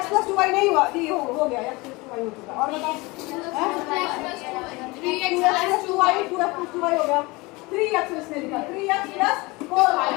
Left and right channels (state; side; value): quieter; right; 23.8 dB